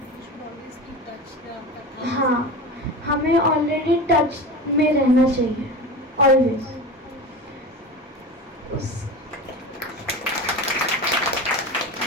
हाँ, हमें ऑलरेडी टच में रहना चाहिए ऑलवेज।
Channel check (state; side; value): normal; both; correlation 0.29